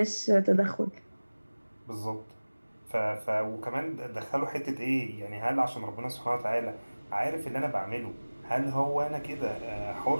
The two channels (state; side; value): inverted; both; correlation -1.00